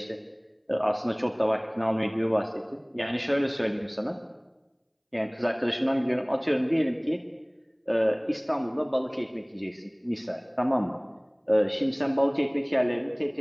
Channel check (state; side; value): identical; both; correlation 1.00